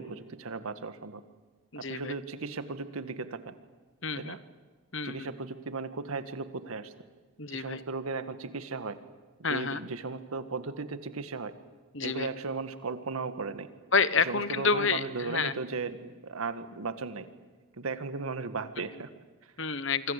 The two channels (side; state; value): both; normal; correlation -0.09